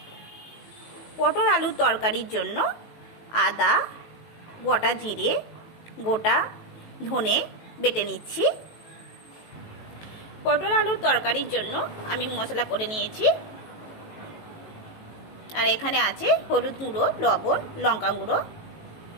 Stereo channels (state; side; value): late; right; 19 ms